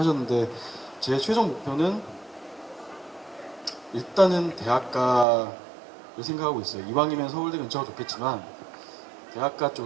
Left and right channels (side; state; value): left; drops out; at 5.2 s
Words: 제 최종 목표는 일단은 대학가를 생각하고 있어요. 이왕이면 서울대 근처가 좋겠지만 대학가